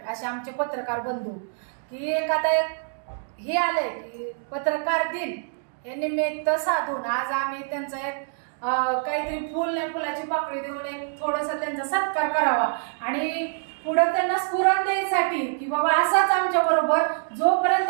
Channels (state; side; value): silent; left; digital silence